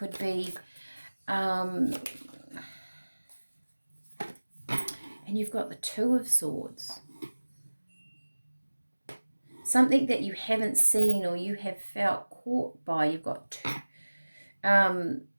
be and you've got the Two of Swords. Something that you haven't seen or you have felt caught by. You've got two.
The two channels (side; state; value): both; inverted; correlation -1.00